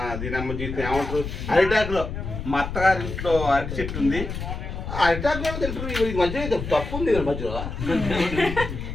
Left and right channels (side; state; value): left; noise; rumble, 6 dB below the sound